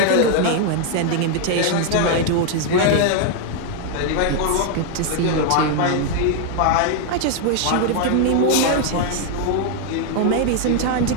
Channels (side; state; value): both; different; correlation 0.00